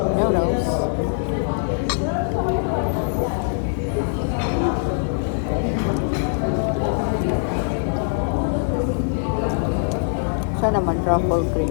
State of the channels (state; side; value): silent; right; digital silence